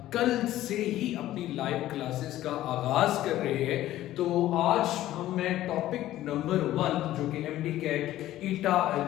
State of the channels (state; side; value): quieter; right; 14.3 dB